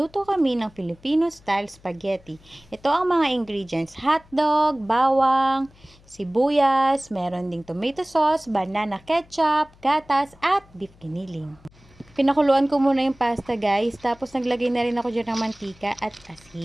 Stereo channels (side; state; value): left; noise; hum, 27 dB below the sound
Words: kami ng Filipino-style spaghetti. Ito ang mga ingredients: hotdog, bawang, sibuyas, meron ding tomato sauce, banana ketchup, gatas, at beef giniling. Pinakuluan ko muna yung pasta guys, tapos naglagay na rin ako dyan ng mantika at